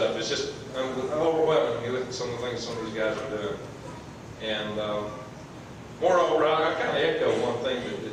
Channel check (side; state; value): both; identical; correlation 1.00